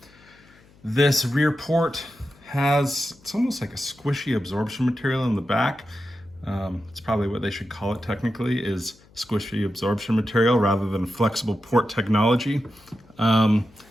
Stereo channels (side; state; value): left; noise; hum, 28 dB below the sound